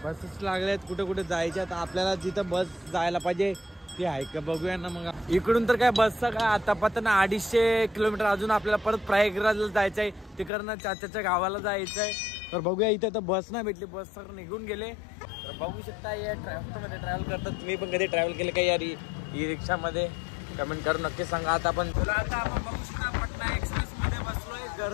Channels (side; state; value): right; drops out; at 10.5 s